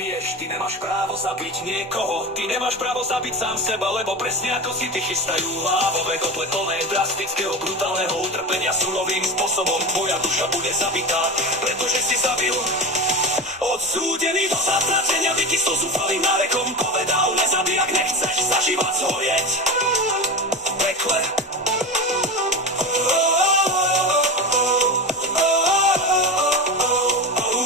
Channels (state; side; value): normal; both; correlation 0.24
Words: Ty nemáš právo zabiť niekoho, ty nemáš právo zabiť sám seba, lebo presne ako si ty chystajú lávové kotle plné drastického, brutálneho utrpenia surovým spôsobom tvoja duša bude zabitá, pretože si zabil. Odsúdený do zatratenia, by ti so zúfalým nárekom povedal: nezabij, ak nechceš za život zhorieť v pekle.